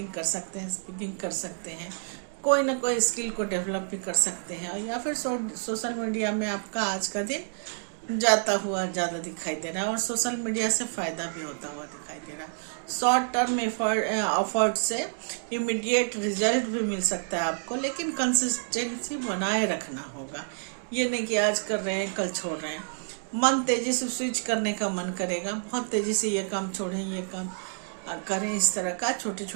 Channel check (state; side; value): silent; left; digital silence